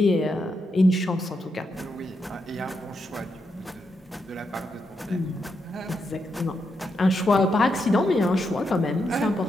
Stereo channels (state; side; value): normal; both; correlation 0.83